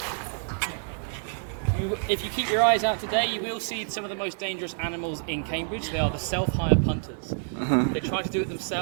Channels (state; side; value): silent; left; 60 dB below the other